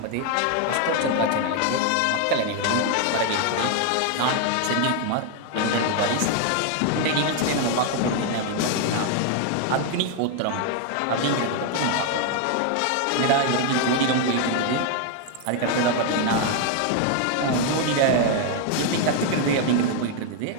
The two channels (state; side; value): different; both; correlation 0.00